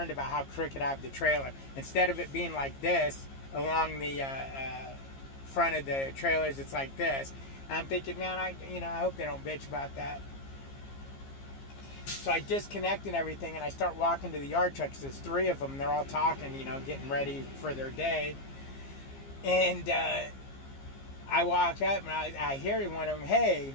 about how crooked I have the trailer. Instead of it being like this, along the front of the trailers. It's like this. And I'm thinking, man, I hope they don't bitch about that. So I disconnect and everything, and I start walking to the yard truck because there's 3 of them. They're all talking, getting ready for their day. And I walk up, and I hear one of them, "Hey,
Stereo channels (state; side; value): late; right; 15 ms